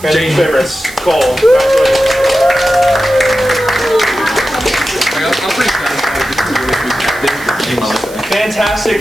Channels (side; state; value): right; noise; hiss, 18 dB below the sound